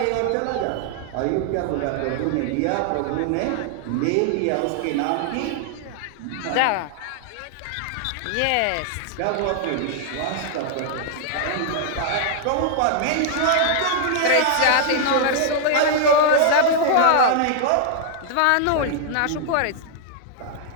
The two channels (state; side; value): different; both; correlation -0.01